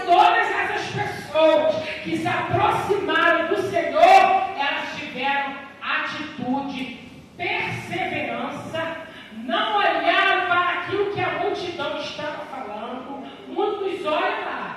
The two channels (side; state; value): both; identical; correlation 1.00